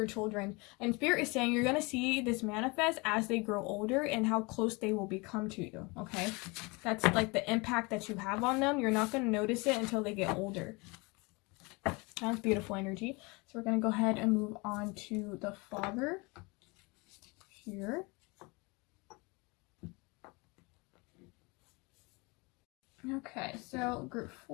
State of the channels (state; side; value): quieter; right; 27.1 dB